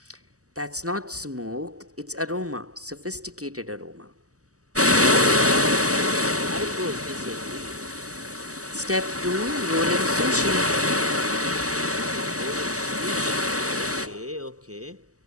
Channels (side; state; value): left; late; 0.66 ms